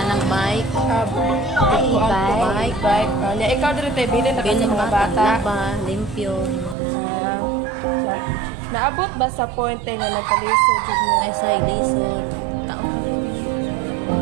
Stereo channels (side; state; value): left; drops out; at 6.8 s